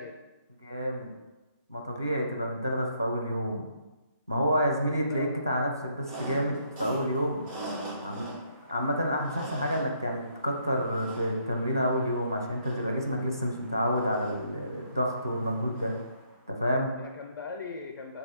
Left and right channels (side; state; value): both; inverted; correlation -0.71